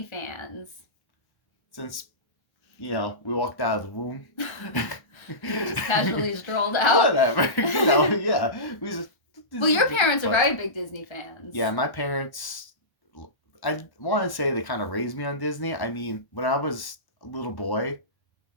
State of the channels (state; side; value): late; right; 1.1 ms